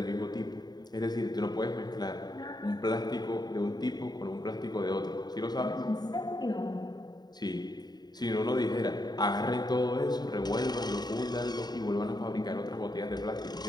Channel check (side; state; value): right; late; 0.20 ms